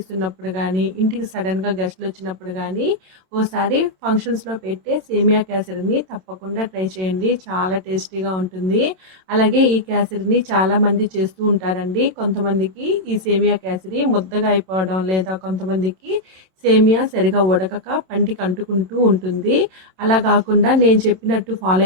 ఉన్నప్పుడు కానీ, ఇంటికి సడన్గా గెస్ట్లు వచ్చినప్పుడు కానీ, ఓసారి ఫంక్షన్స్లో పెట్టే సేమియా కేసరిని తప్పకుండా ట్రై చేయండి. చాలా టేస్టీగా ఉంటుంది. అలాగే ఈ కేసరిని చాలామంది చేస్తూ ఉంటారండి. కొంతమందికి ఈ సేమియా కేసరి ముద్దగా అయిపోవడం, లేదా కొంతమందికి సేమియా సరిగా ఉడకక పంటికి అంటుకుంటూ ఉంటుంది. అలా కాకుండా నేను చెప్పినట్టు ఫాలో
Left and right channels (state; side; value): late; left; 27 ms